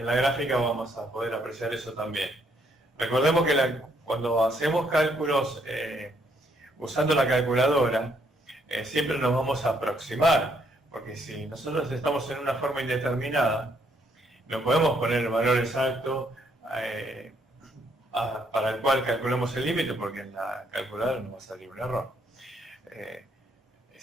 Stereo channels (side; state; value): both; normal; correlation 0.71